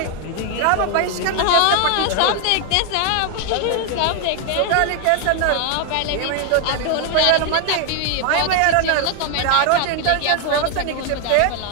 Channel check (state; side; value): different; both; correlation 0.01